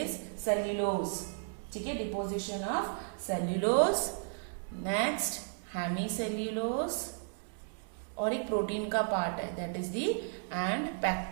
सेल्यूलोज। ठीक है, deposition of cellulose, next hemicellulose, और एक प्रोटीन का पार्ट है that is the and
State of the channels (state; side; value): silent; left; digital silence